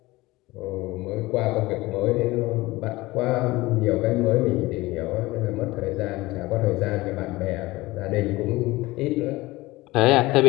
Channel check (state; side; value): quieter; right; 20.1 dB